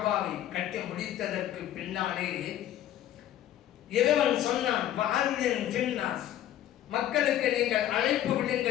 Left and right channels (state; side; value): quieter; right; 12.1 dB